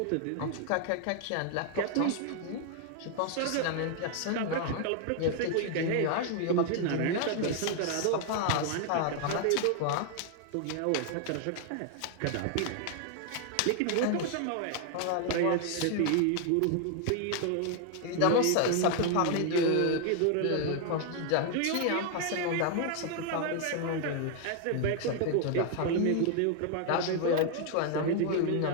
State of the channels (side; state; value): both; different; correlation 0.00